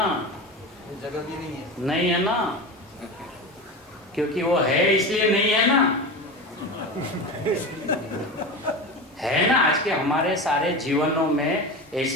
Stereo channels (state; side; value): normal; both; correlation 0.26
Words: ये जगह भी नहीं है। नहीं है ना, क्योंकि वो है इसलिए नहीं है ना। है ना, आज के हमारे सारे जीवनों में